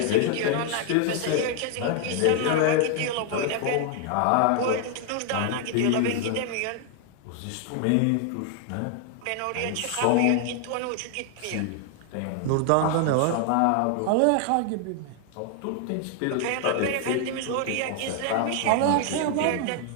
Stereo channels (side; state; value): both; different; correlation 0.00